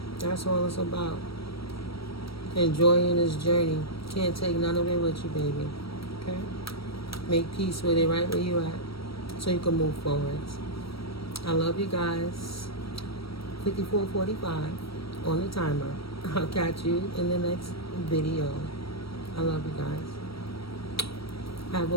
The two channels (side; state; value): right; late; 0.75 ms